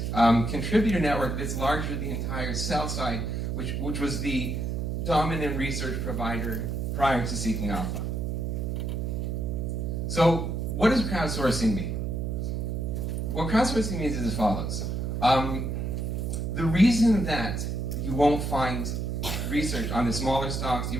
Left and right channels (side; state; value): right; noise; hum, 1 dB below the sound